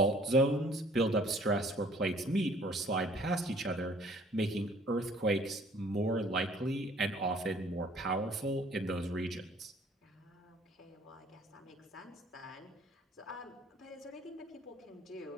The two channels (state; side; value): normal; both; correlation 0.56